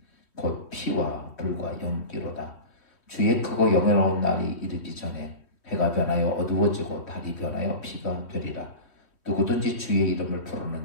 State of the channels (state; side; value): late; right; 2.9 ms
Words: 곧 피와 불과 연기로다. 주의 크고 영예로운 날이 이르기 전에 해가 변하여 어두워지고 달이 변하여 피가 되리라. 누구든지 주의 이름을